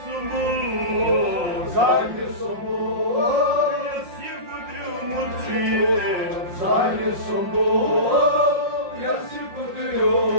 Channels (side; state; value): left; late; 5.6 ms